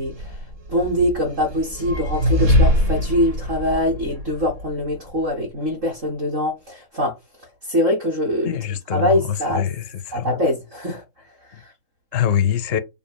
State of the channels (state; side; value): late; left; 3.7 ms